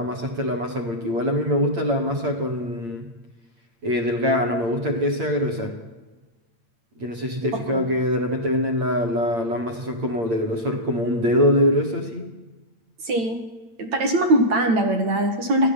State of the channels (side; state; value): left; late; 8.9 ms